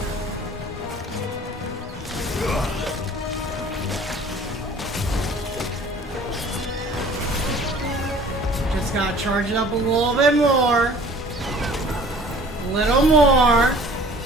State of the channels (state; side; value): normal; both; correlation 0.50